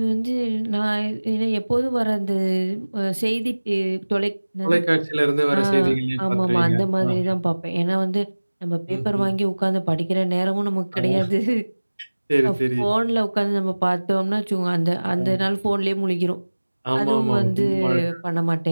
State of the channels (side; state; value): both; inverted; correlation -1.00